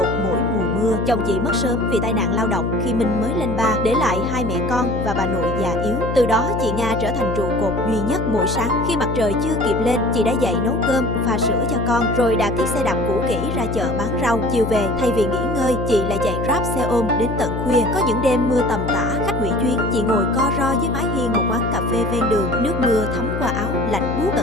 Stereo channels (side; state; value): left; noise; hum, 3 dB below the sound